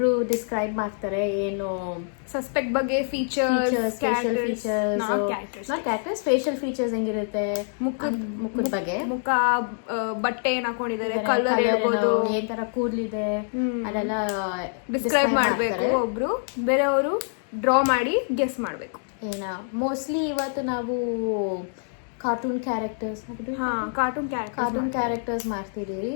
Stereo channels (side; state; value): right; silent; digital silence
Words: ಡಿಸ್ಕ್ರೈಬ್ ಮಾಡ್ತಾರೆ ಏನು ಸಸ್ಪೆಕ್ಟ್ ಬಗ್ಗೆ, ಫೀಚರ್ಸ್, ಫೇಶಿಯಲ್ ಫೀಚರ್ಸ್ ಹೆಂಗಿರುತ್ತೆ, ಮುಖದ ಬಗ್ಗೆ, ಮುಖ, ಬಟ್ಟೆ ಏನ್ ಹಾಕೊಂಡಿದ್ದಾರೆ, ಕಲರ್ ಇರ್ಬೋದು, ಏನ್ ತರ ಕೂದಲಿದೆ ಅದೆಲ್ಲ ಡಿಸ್ಕ್ರೈಬ್ ಮಾಡ್ಬೇಕು. ಒಬ್ರು ಬೇರೆಯವರು ಡ್ರಾ ಮಾಡಿ ಗೆಸ್ ಮಾಡ್ಬೇಕು. ಏನ ಮೋಸ್ಟ್ಲಿ ಇವತ್ತು ನಾವು ಕಾರ್ಟೂನ್ ಕ್ಯಾರೆಕ್ಟರ್ಸ್ ಮಾಡ್ತಿದ್ದೀವಿ.